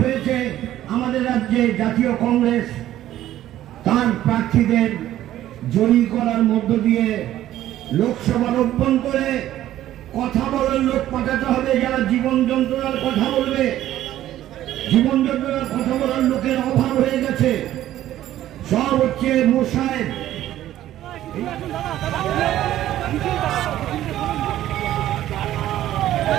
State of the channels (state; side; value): quieter; left; 13.2 dB